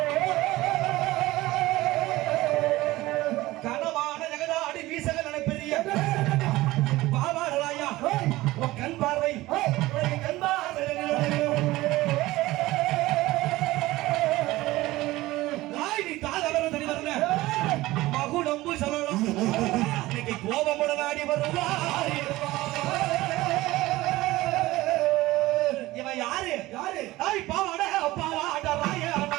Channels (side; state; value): left; quieter; 18.2 dB